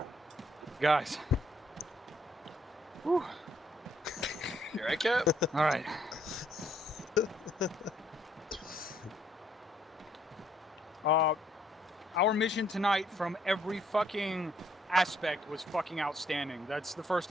Guys. Whew. You right, Cap? All right. Our mission tonight from every fucking aspect was fucking outstanding. That's the first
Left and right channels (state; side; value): normal; both; correlation 0.68